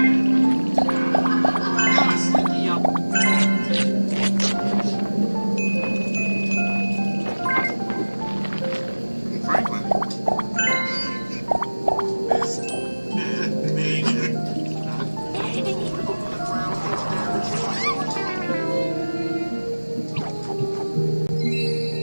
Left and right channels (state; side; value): inverted; both; correlation -1.00